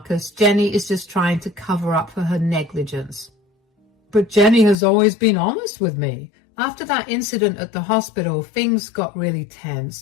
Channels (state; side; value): drops out; right; at 4.8 s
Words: Jenny is just trying to cover up for her negligence. But Jenny has always been honest with me. After that incident at the hospital, things got really